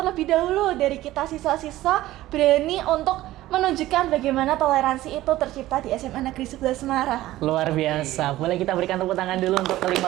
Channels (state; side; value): quieter; left; 15.8 dB